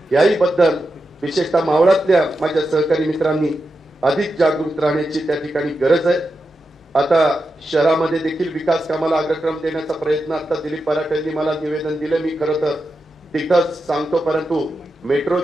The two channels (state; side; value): normal; both; correlation 0.88